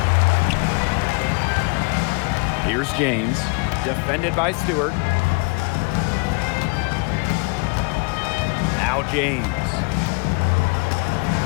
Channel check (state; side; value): quieter; right; 32.0 dB